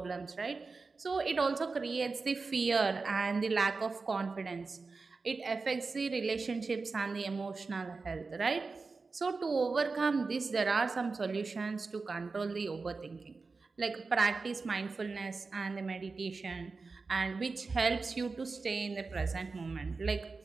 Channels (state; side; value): quieter; left; 4.2 dB